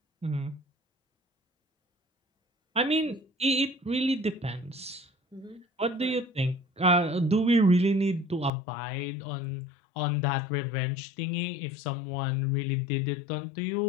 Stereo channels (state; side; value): drops out; right; at 8.5 s